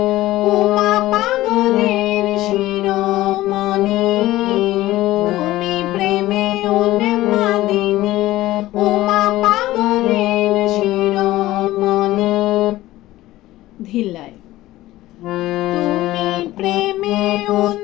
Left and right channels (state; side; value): quieter; right; 16.4 dB